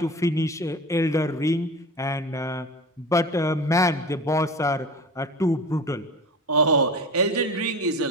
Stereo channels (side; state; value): both; normal; correlation 0.33